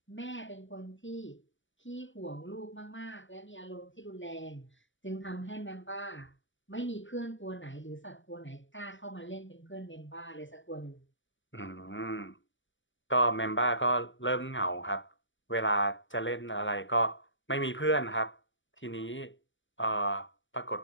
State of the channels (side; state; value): right; late; 0.55 ms